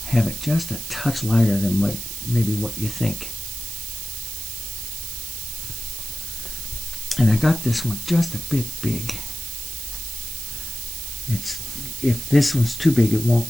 have it just a touch lighter than what you think. And I got this one just a bit big. If this one's too big,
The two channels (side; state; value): right; noise; hiss, 7 dB below the sound